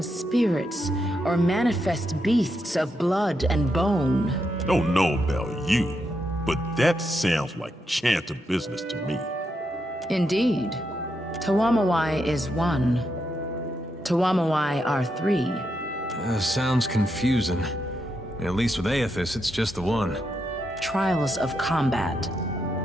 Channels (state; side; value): normal; both; correlation 0.82